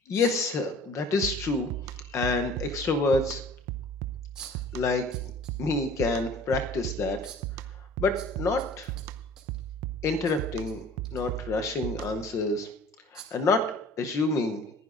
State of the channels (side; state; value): both; normal; correlation 0.47